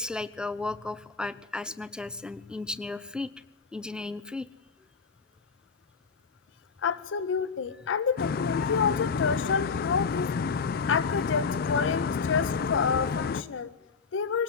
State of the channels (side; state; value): right; quieter; 5.3 dB